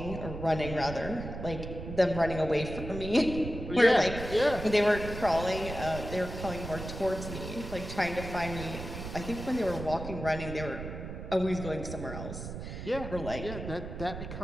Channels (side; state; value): right; noise; rumble, 8 dB below the sound